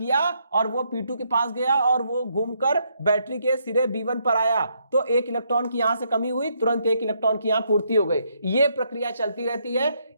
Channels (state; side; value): inverted; both; correlation -0.75